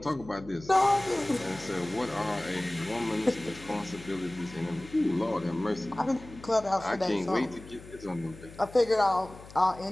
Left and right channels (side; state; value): left; noise; hum, 18 dB below the sound